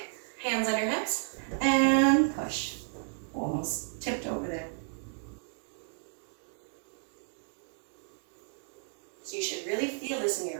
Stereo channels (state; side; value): silent; left; 56 dB below the other